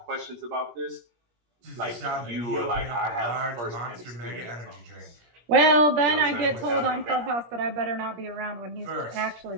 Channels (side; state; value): left; late; 17 ms